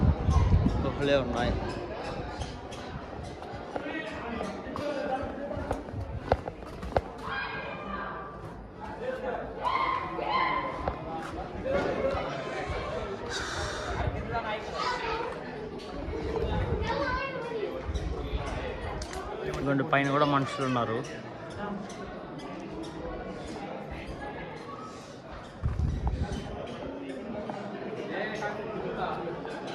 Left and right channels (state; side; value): identical; both; correlation 1.00